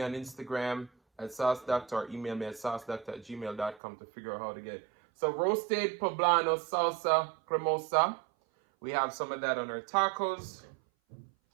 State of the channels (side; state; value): left; drops out; at 3.8 s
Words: on Instagram at Sauce Dackta or email me at saucedackta@gmail.com to figure out how to get it. So roasted poblano salsa cremosa. We have some of that on our tacos.